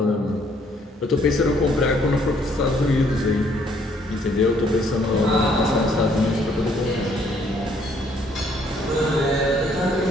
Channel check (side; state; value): both; normal; correlation 0.65